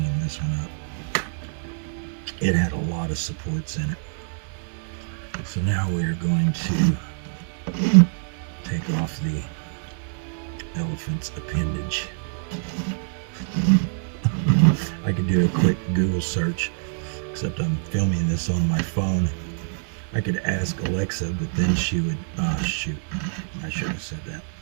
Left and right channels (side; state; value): left; silent; 59 dB below the other